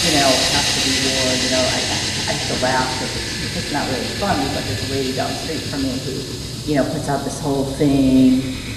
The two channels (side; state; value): both; identical; correlation 1.00